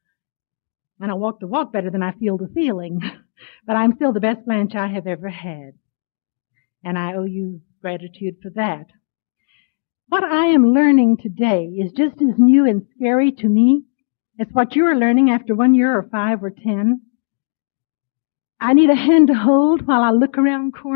And I walk the walk better than I feel the feeling. But I'm still the best Blanche I have ever had. And I owe you gratitude for that. What I am learning today is just as new and scary to me as what you are learning after 1 year or 5 or 10. I need a hand to hold while I look around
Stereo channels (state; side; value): silent; right; 67 dB below the other